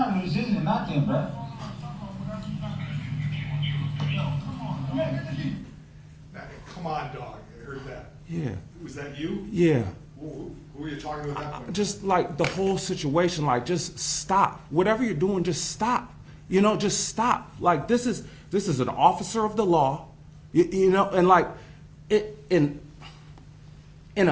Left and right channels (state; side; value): identical; both; correlation 1.00